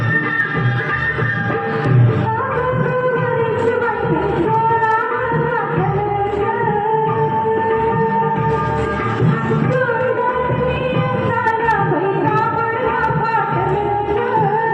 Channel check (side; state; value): both; identical; correlation 1.00